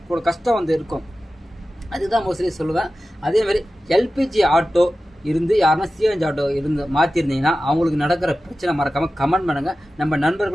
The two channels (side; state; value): both; normal; correlation 0.94